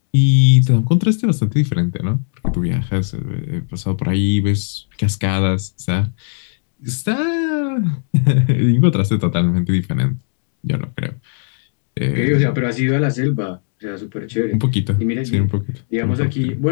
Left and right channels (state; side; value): silent; right; digital silence